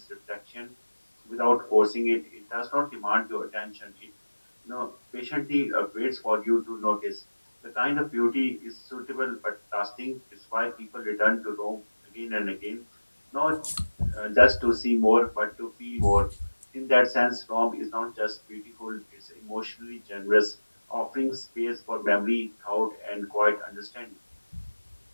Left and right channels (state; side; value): inverted; both; correlation -1.00